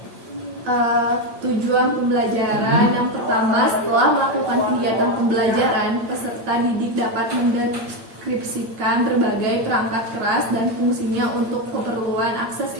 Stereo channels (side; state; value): left; late; 8.8 ms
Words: Tujuan pembelajaran yang pertama, setelah melakukan kegiatan pembelajaran, peserta didik dapat mendeskripsikan berbagai perangkat keras dan fungsinya untuk keperluan akses